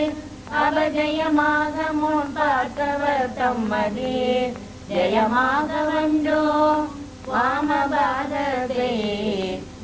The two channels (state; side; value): identical; both; correlation 1.00